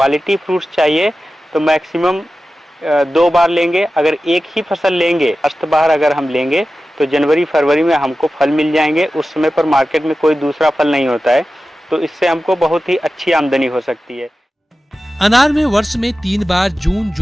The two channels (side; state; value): both; normal; correlation 0.94